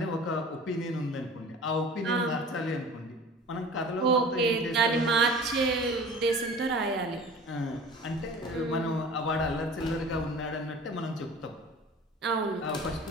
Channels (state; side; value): normal; both; correlation 0.42